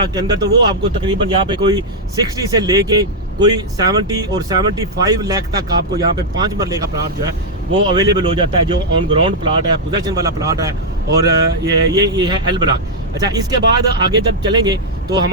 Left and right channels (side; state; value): both; normal; correlation -0.03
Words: के अंदर तो वो आपको तकरीबन यहाँ पे कोई 60 से लेके कोई 70 और 75 लाख तक आपको यहाँ पे 5 मरले का प्लाट जो है वो अवेलेबल हो जाता है, जो ऑन ग्राउंड प्लाट है, पोजेशन वाला प्लाट है। और ये है एल ब्लॉक। अच्छा, इसके बाद आगे जब चलेंगे तो